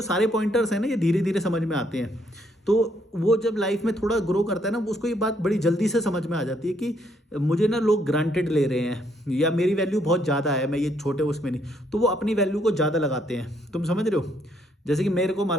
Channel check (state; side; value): normal; both; correlation 0.71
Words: सारे पॉइंटर्स हैं ना, ये धीरे धीरे समझ में आते हैं। तो वो जब लाइफ में थोड़ा ग्रो करता है ना, उसको ये बात बड़ी जल्दी से समझ में आ जाती है कि मुझे ना लोग ग्रांटेड ले रहे हैं या मेरी वैल्यू बहुत ज़्यादा है, मैं ये छोटे उसमें नहीं। तो वो अपनी वैल्यू को ज़्यादा लगाते हैं। तुम समझ रहे हो? जैसे कि मेरे को